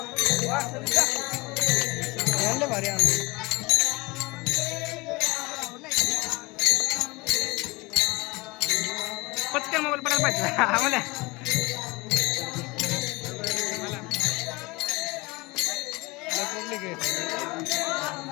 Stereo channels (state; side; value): quieter; right; 23.9 dB